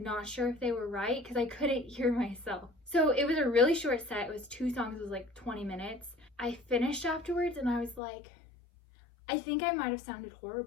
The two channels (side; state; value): right; drops out; at 8.0 s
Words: sure if they were right because I couldn't hear myself. So it was a really short set. It was 2 songs, it was like 20 minutes. I finished afterwards and I was like, I think I might have sounded